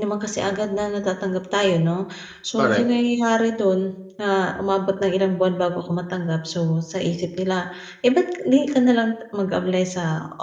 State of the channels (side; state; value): both; identical; correlation 1.00